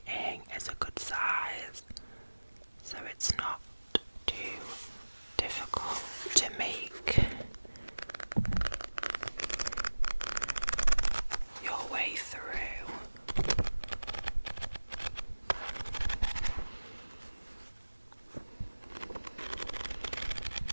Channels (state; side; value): inverted; both; correlation -1.00